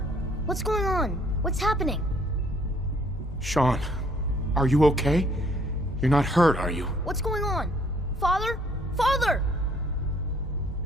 what's going on? What's happening? Sean, are you okay? You're not hurt, are you? What's going on? Father? Father!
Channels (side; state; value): both; normal; correlation 0.62